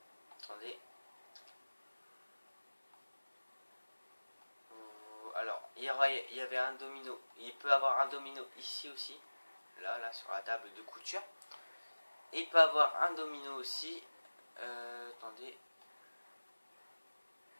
Attendez. Alors, il y avait un domino. Il peut avoir un domino ici aussi. Là, sur la table de couture. Et il peut avoir un domino aussi. Attendez.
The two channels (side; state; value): both; inverted; correlation -1.00